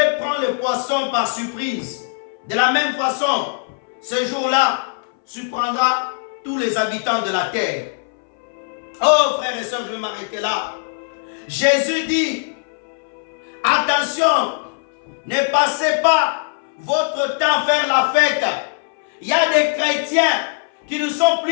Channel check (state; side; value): silent; right; 60 dB below the other